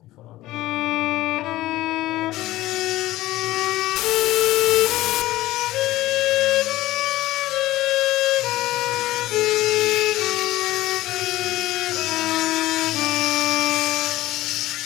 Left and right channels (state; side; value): quieter; right; 16.6 dB